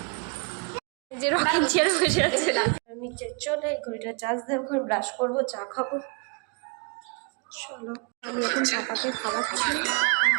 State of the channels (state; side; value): quieter; left; 35.1 dB